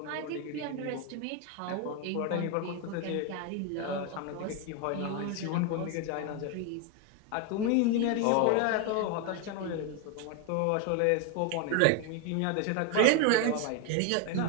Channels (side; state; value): both; different; correlation 0.02